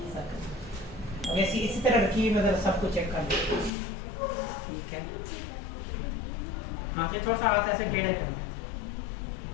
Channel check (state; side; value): drops out; right; at 3.7 s